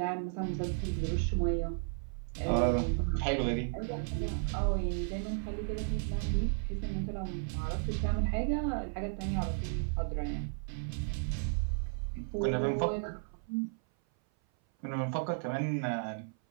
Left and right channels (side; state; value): left; silent; 55 dB below the other